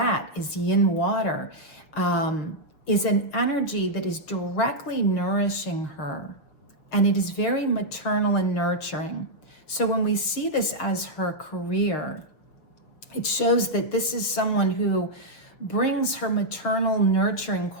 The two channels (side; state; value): right; late; 6.3 ms